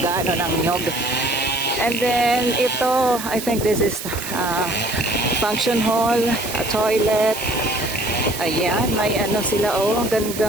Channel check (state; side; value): noise; right; hiss, 9 dB below the sound